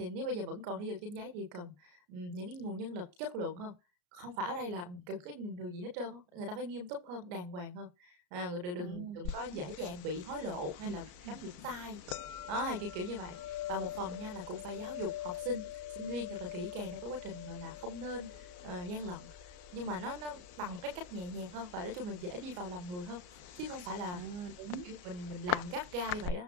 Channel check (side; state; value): left; late; 34 ms